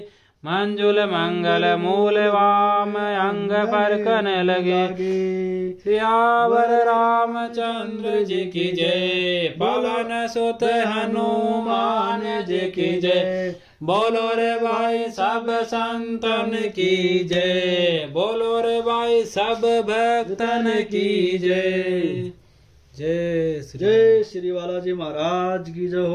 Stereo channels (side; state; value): both; identical; correlation 1.00